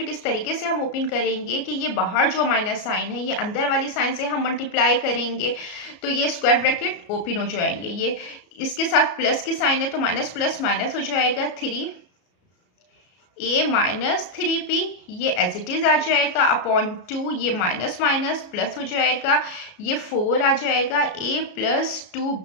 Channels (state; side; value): late; right; 33 ms